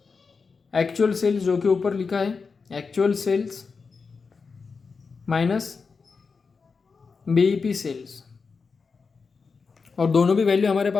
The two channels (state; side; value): quieter; right; 4.9 dB